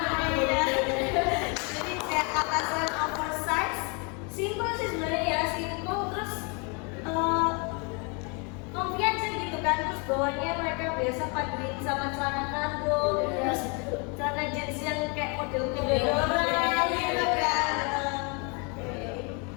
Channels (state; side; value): quieter; right; 33.5 dB